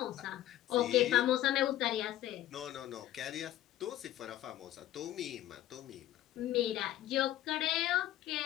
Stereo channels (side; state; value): right; quieter; 13.6 dB